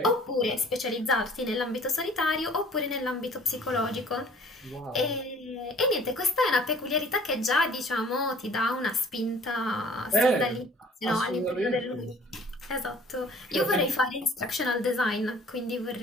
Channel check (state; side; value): normal; both; correlation 0.52